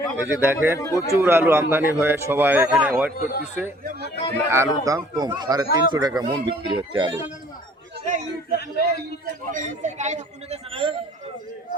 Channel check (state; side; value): normal; both; correlation 0.55